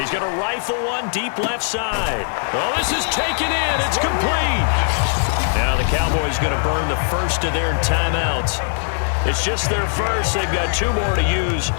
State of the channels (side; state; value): right; silent; 66 dB below the other